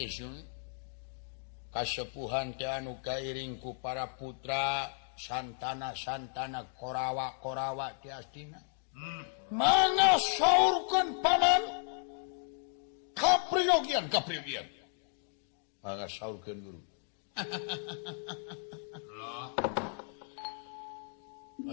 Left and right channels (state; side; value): silent; right; 55 dB below the other